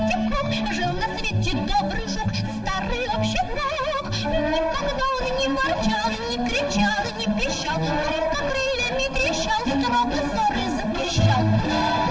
в круг. Жил на свете добрый жук, старый общий друг. Никогда он не ворчал, не кричал, не пищал, только крыльями трещал, строго ссоры запрещал.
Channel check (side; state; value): both; identical; correlation 1.00